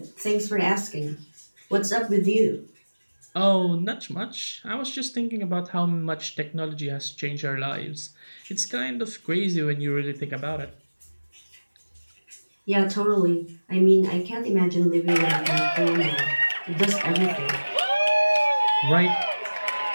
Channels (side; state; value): both; inverted; correlation -1.00